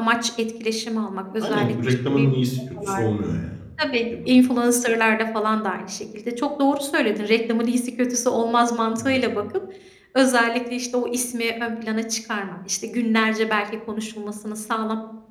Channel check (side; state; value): both; identical; correlation 1.00